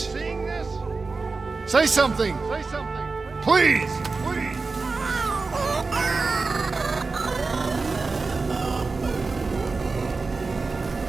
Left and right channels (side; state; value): left; quieter; 4.0 dB